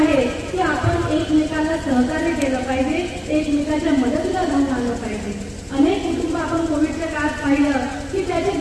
की आपण एकमेकांना सहकार्य केलं पाहिजे, एकमेकांच्या मदतीला धावून आलं पाहिजे. अनेक कुटुंब आपण कोविडच्या काळात पाहिलं की त्याचे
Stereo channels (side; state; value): both; identical; correlation 1.00